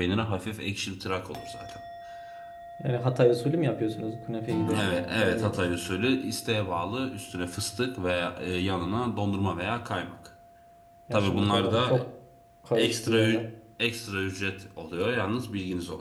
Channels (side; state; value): both; identical; correlation 1.00